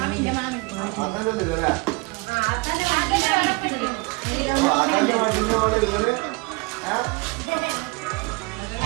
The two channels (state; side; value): quieter; left; 27.2 dB